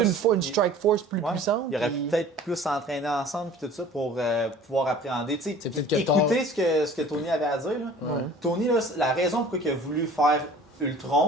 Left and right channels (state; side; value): normal; both; correlation 0.47